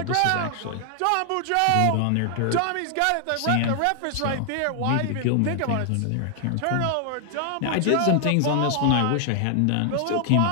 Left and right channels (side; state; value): both; different; correlation 0.00